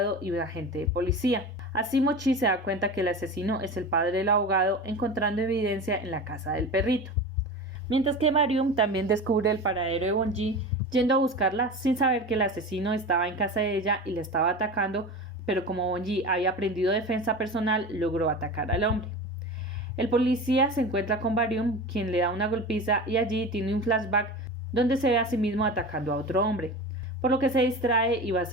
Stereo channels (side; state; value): both; normal; correlation 0.30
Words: y un agente de policía. Así Mochi se da cuenta que el asesino es el padre del abogado, encontrando evidencia en la casa del perrito. Mientras que Barium también descubre el paradero de Bonji, yendo a buscarla sin saber que el asesino estaba en casa de ella y le estaba atacando, pero como Bonji había aprendido defensa personal, logró atacar al hombre. El policía se encuentra con Barium, quien le da una golpiza y allí tiene un flashback donde se ve a sí mismo atacando a otro hombre, por lo que se distrae y va a